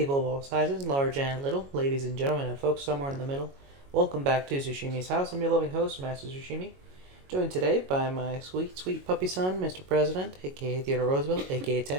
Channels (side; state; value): left; late; 22 ms